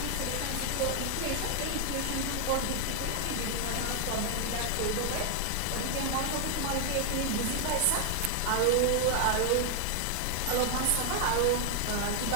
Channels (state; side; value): different; both; correlation 0.00